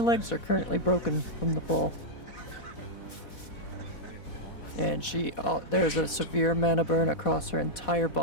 legs are currently broken from the fall. And there's a severe mana burn across her entire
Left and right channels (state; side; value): late; right; 4.1 ms